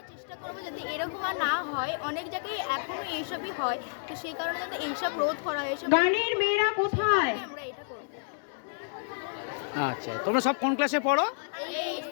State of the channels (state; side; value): silent; right; digital silence